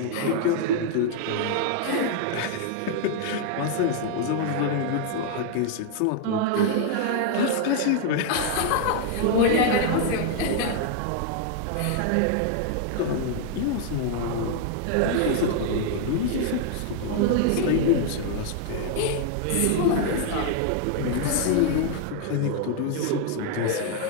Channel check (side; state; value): both; different; correlation 0.00